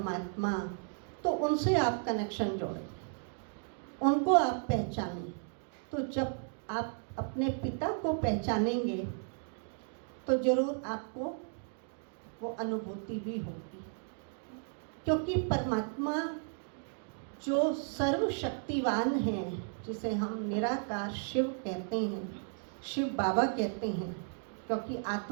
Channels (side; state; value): left; silent; 55 dB below the other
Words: तो उनसे आप कनेक्शन जोड़ें, उनको आप पहचानें। तो जब आप अपने पिता को पहचानेंगे तो जरूर आपको वो अनुभूति भी होगी, क्योंकि परमात्मा जो सर्वशक्तिवान है, जिसे हम निराकार शिव कहते हैं, शिव बाबा कहते हैं, क्योंकि